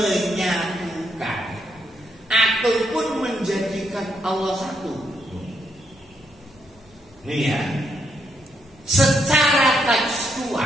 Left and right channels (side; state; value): both; normal; correlation 0.77